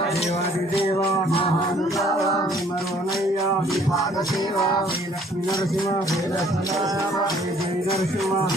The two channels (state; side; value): normal; both; correlation 0.59